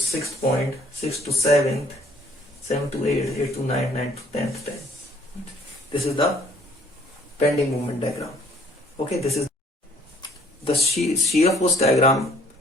point, sixth to seventh, seventh to eighth, eighth to ninth, ninth to 10th, 10th. This is the bending moment diagram. Okay, this is the shear force diagram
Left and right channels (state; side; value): normal; both; correlation 0.60